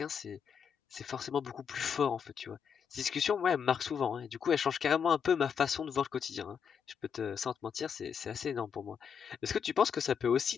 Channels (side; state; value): right; quieter; 7.1 dB